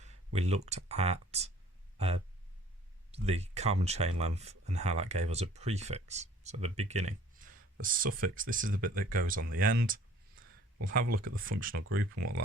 we looked at the carbon chain length and how that gave us a prefix, so the beginning. The suffix, this is the bit that goes on the end. We'll have a look at the functional group and what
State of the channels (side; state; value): both; normal; correlation 0.53